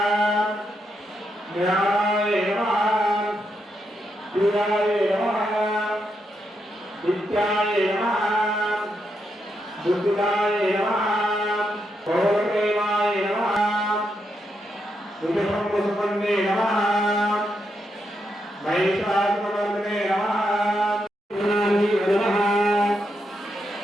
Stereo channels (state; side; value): normal; both; correlation 0.82